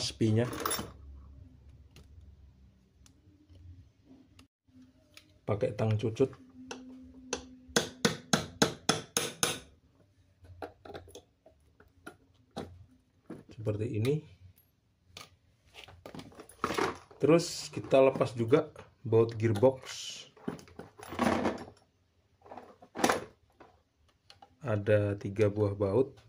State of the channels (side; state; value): both; identical; correlation 1.00